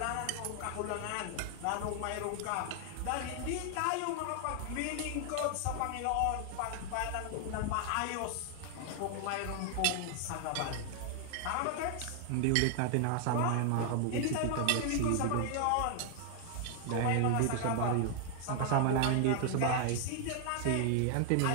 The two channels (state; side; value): different; both; correlation 0.00